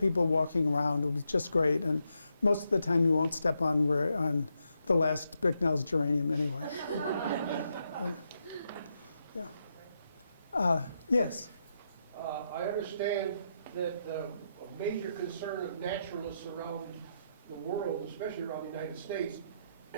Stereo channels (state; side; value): inverted; both; correlation -0.82